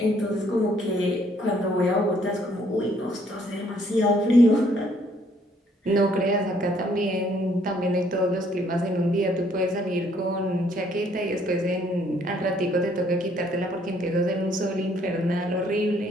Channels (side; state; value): both; normal; correlation 0.65